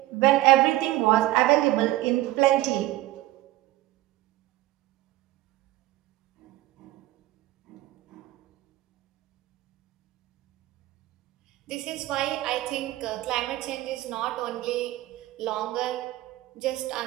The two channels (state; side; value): quieter; left; 16.7 dB